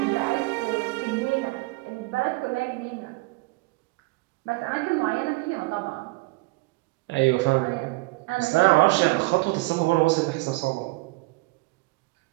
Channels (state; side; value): quieter; left; 23.6 dB